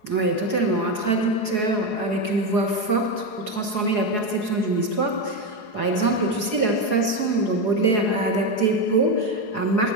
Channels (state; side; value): late; right; 4.8 ms